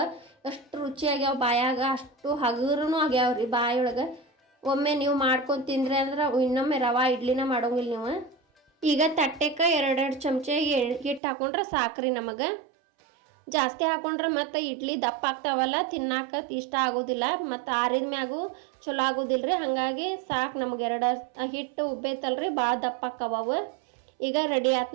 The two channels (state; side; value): drops out; left; at 11.2 s